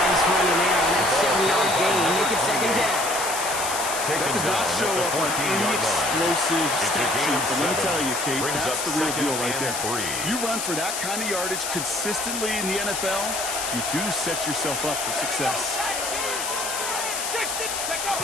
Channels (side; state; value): left; noise; hiss, 3 dB below the sound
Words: run in there on that 7-yard gain. Make it 2nd down. That does not show up on any explosive stat sheet, but let me tell you, Kate, that's the real deal right there. You run for that kind of yardage consistently in the NFL, you do set yourself up for success. 60, check out.